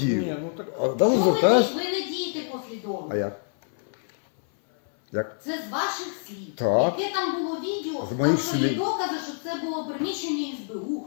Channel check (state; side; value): silent; right; 57 dB below the other